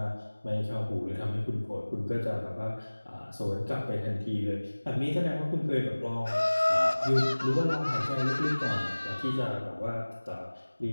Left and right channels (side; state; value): both; inverted; correlation -1.00